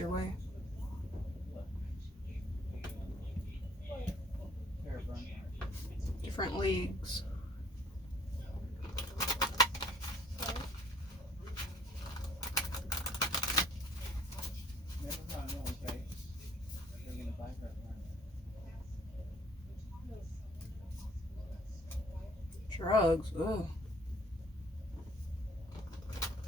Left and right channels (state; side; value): normal; both; correlation 0.58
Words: way. Different leagues. Drugs. Ugh.